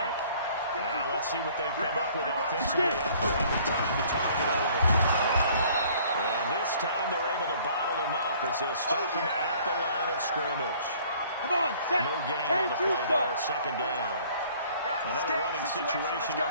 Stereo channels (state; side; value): inverted; both; correlation -0.56